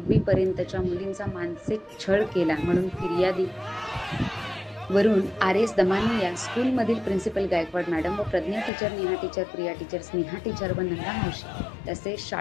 पर्यंतच्या मुलींचा मानसिक छळ केला म्हणून फिर्यादी वरून RAS दमानी या स्कूलमधील प्रिन्सिपल गायकवाड मॅडम व Pragya teacher, Neha teacher, Priya teacher, Sneha teacher व नंदा मावशी तसेच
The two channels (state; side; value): drops out; right; at 8.7 s